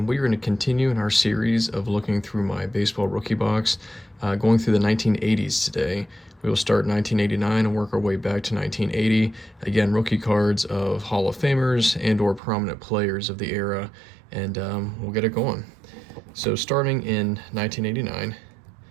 we're going to continue in our series of looking through my baseball rookie box, going through the 1980s today. We will start 1989 and work our way back to 1980. Again, rookie cards of Hall of Famers and or prominent players of the era, and we'll get it going. So starting in 1989,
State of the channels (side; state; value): left; drops out; at 12.4 s